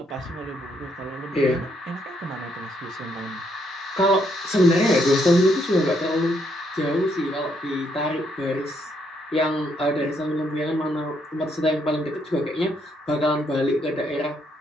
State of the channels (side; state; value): both; normal; correlation 0.74